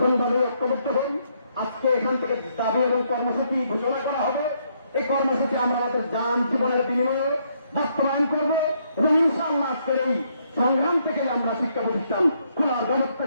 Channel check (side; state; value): both; inverted; correlation -0.73